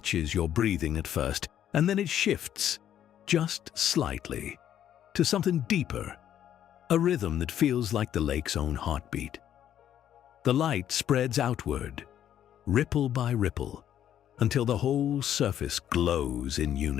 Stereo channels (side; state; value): right; quieter; 10.5 dB